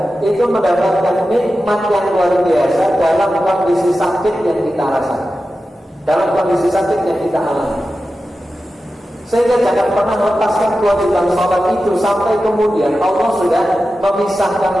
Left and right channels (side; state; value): both; normal; correlation 0.93